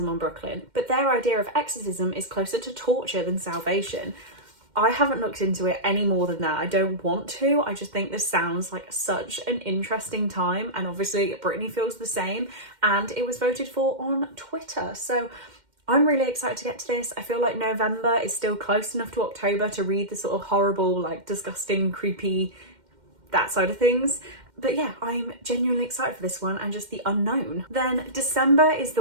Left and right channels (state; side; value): late; left; 2.1 ms